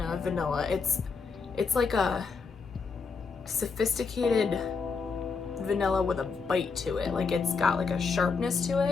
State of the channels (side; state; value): right; quieter; 4.9 dB